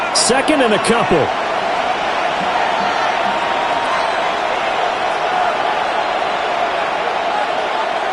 Second and a couple.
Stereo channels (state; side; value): identical; both; correlation 1.00